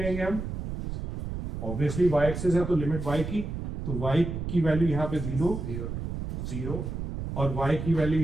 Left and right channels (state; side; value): noise; right; rumble, 5 dB below the sound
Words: हम, ऑब्वियसली y एक्सिस है तो लिमिट y की, तो y की वैल्यू यहाँ पे 0 और y की वैल्यू